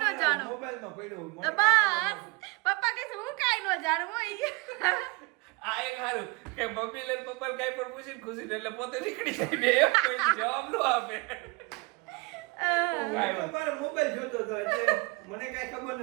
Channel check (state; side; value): quieter; left; 26.6 dB